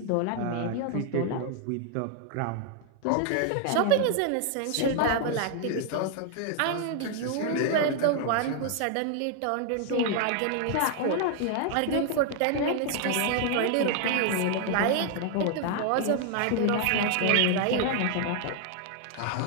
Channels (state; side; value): different; both; correlation 0.00